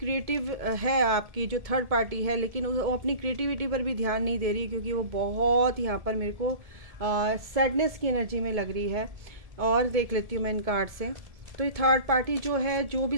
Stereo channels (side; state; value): left; late; 1.7 ms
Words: है आपकी जो थर्ड पार्टी है, लेकिन वो अपनी क्रिएटिविटी पर भी ध्यान नहीं दे रही, क्योंकि वो बहुत यहाँ पर मेरे को सैडनेस की एनर्जी में लग रही है। और देख लेती हूँ मैं इन कार्ड से। तो ये थर्ड पार्टी जो है, जो भी